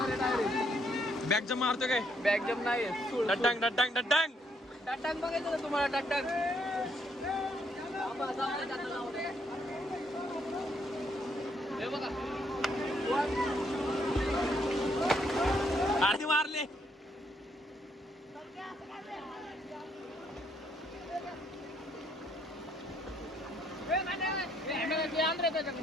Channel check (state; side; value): normal; both; correlation 0.72